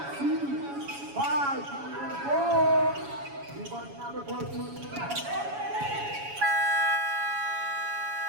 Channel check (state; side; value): late; left; 7.1 ms